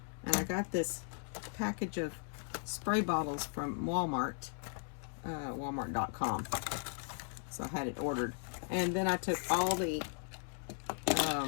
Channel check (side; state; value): right; silent; 53 dB below the other